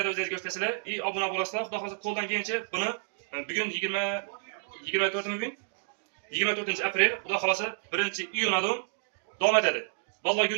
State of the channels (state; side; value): silent; left; digital silence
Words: o'zingiz ko'rsatasizlar, obuna bo'lasizlar. Xudo xolasa qo'ldan kelgancha buni bugun 24 aprel, xudo xolasa 1-iyundan davom etadi. Vallahi